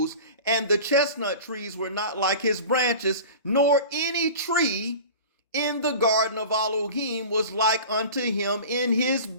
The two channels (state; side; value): inverted; both; correlation -0.37